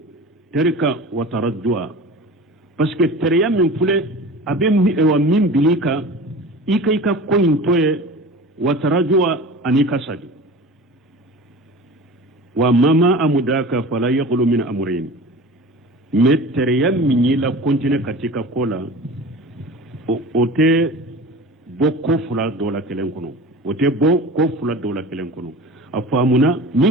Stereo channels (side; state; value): both; normal; correlation 0.36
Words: terika wa taraddua parce que tereya min fule abe wa min bilika ika ko intoye wa taraddua anika sagi wa mama amudaka fala yaqulu min amrayn mais tereya min la continue katika kola ote boko fula dola kelen kono ote boko fula dola kelen kono afamuna